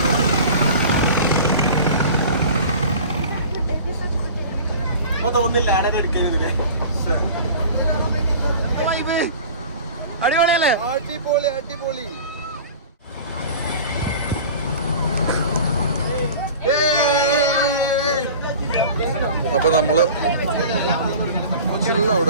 തോന്നുന്നില്ല ആടെ എടുക്കരുത്. അടിപൊളിയല്ലേ? അടിപൊളി അടിപൊളി. അപ്പൊ നമ്മള് ചില്ല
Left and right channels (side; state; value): both; inverted; correlation -0.39